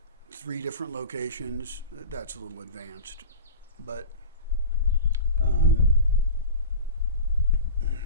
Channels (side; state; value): both; inverted; correlation -0.33